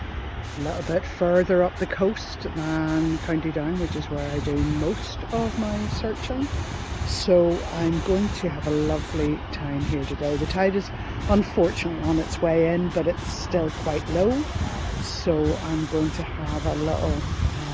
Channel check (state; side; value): identical; both; correlation 1.00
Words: a little bit further up the coast than County Down, which is where I do most of my searching. So I'm going to have a lovely time here today. The tide is unfortunately on its way in, but it's still quite low. So I'm going to have a little